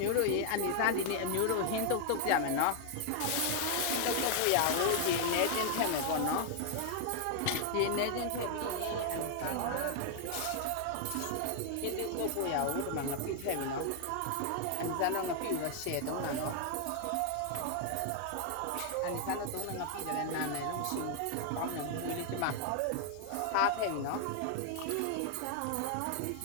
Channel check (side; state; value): both; different; correlation 0.00